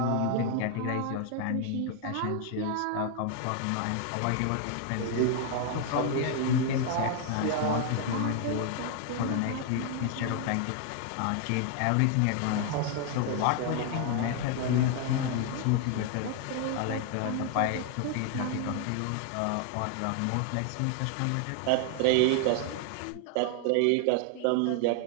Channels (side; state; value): both; different; correlation 0.00